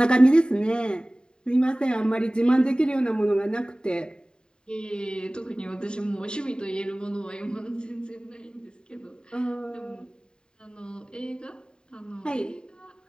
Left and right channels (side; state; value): right; late; 0.048 ms